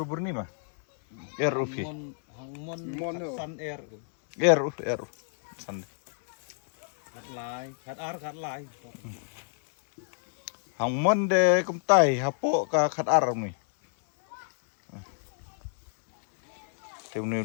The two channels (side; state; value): right; silent; 59 dB below the other